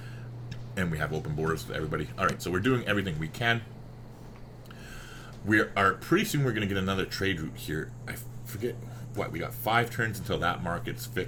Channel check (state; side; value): identical; both; correlation 1.00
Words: and we have open borders with everybody. Alright, so we're doing everything we can. We are pretty soon we're going to get another trade route here. I forget what, we got 5 turns until that market's